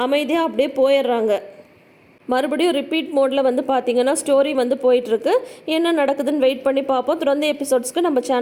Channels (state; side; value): identical; both; correlation 1.00